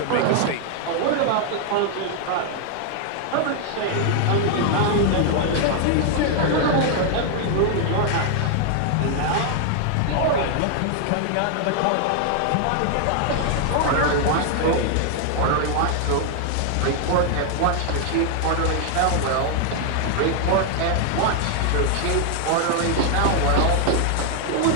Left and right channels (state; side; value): different; both; correlation 0.00